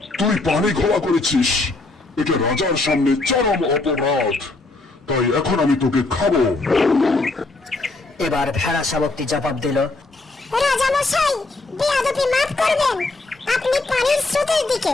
তুই পানি ঘোলা করেছিস, এটা রাজার সামনে চরম অপরাধ, তাই এখন আমি তোকে খাবো। এবার ভেড়া শাবকটি জবাব দিল, রাজা মশাই, বেয়াদবি মাফ করবেন। আপনি পানির স্রোতের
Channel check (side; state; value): right; quieter; 3.2 dB